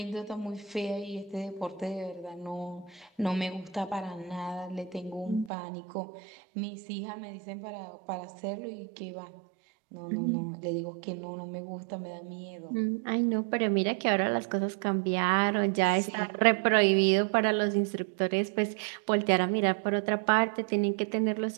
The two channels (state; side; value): drops out; left; at 5.5 s